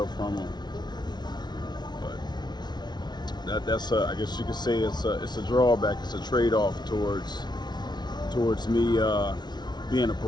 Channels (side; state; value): right; late; 0.20 ms